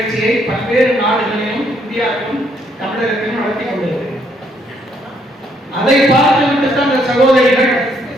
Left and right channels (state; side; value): normal; both; correlation 0.70